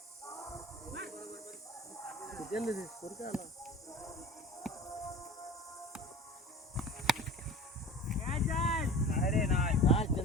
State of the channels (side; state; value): both; normal; correlation 0.40